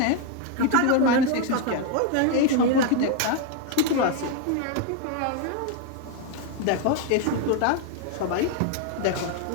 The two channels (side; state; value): both; different; correlation 0.01